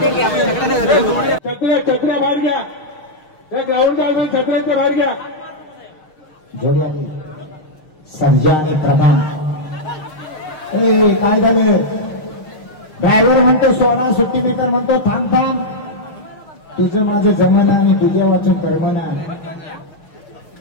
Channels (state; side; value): late; right; 6.5 ms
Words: छत्र्या बाहेर घ्या. त्या ग्राउंडच्या अजून छत्र्यांच्या बाहेर घ्या. जोडी आली. सर्जा आणि प्रधान. काय झालं. ड्रायव्हर म्हणतो सोडा, सुट्टी मीटर म्हणतो थांब थांब. तुझं माझं जमना आणि तुझ्या वाचन कर्मना.